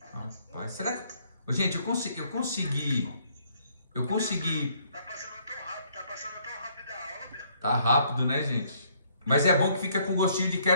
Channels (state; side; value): inverted; both; correlation -0.66